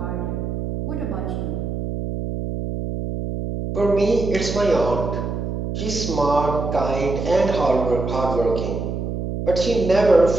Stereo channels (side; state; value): right; noise; hum, 4 dB below the sound